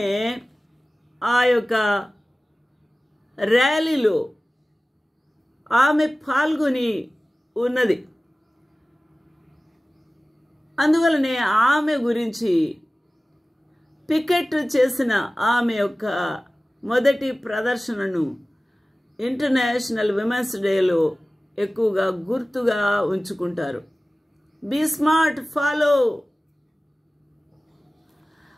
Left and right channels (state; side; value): normal; both; correlation 0.97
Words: ఆ యొక్క ర్యాలీలో ఆమె పాల్గొని ఉన్నది. అందువలనే ఆమె గురించి పికెట్ చేసిన ఆమె యొక్క మొదటి ప్రదర్శనను ఇంటర్నేషనల్ విమెన్స్ డేలో ఎక్కువగా గుర్తుగా ఉంచుకుంటారు. బీ స్మార్ట్, ఫాలో